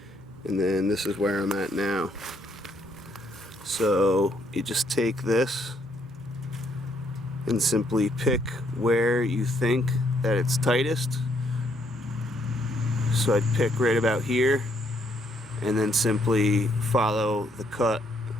And then this is where I'm at now. So you just take this and simply pick where you think that it's tightest. So I'd pick right about here and then simply follow the cut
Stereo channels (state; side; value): normal; both; correlation 0.71